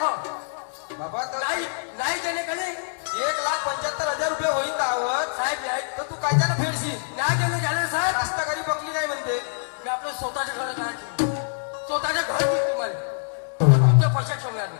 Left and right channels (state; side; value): silent; right; 62 dB below the other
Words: हो. बाबा तर नाही नाही दिले का नाही 1,75,000 रुपये होईल दावत साहेब नाही तर तू काय त्यानं फेडशील नाही दिले झाले साहेब. रास्तागाडी बकली नाही म्हणते मी आपलं स्वतःच्या घरात नाही ठेवलं. स्वतःच्या घरात तुम्हाला तुमच्या पैशात ठेवणार